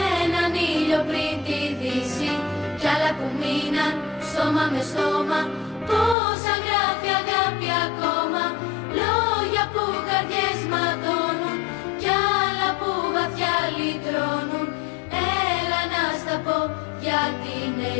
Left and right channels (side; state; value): right; drops out; at 6.2 s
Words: έναν ήλιο πριν τη δύση κι άλλα που μείναν στόμα με στόμα. Πόσα γράφει αγάπη ακόμα, λόγια που καρδιές ματώνουν κι άλλα που βαθιά λυτρώνουν. Έλα να στα πω γιατί είναι